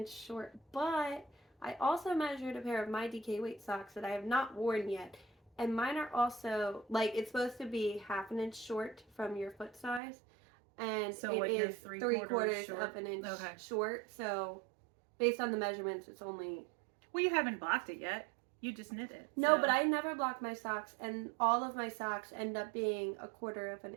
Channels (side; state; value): left; drops out; at 10.0 s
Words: short. But I also measured a pair of my DK weight socks that I have not worn yet. And mine are also, like, it's supposed to be half an inch short from your foot size. And So it what, you're is three three quarters quarters of an inch Okay. short. So based on the measurements, it's only... Well, you haven't blocked it yet. You just knit it. No, so. but I never block my socks, and all of my socks end up being a quarter of an